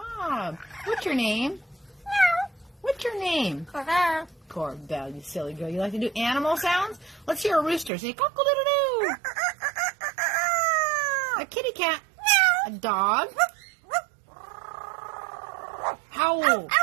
What's your name? What's your name? Corbell, you silly girl. You like to do animal sounds? Let's hear a rooster. Say cock-a-doodle-doo. A kitty cat. A dog. Howl.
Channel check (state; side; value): drops out; left; at 7.9 s